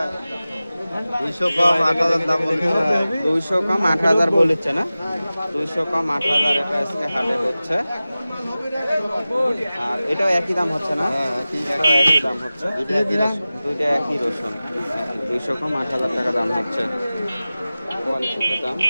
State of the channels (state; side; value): inverted; both; correlation -0.96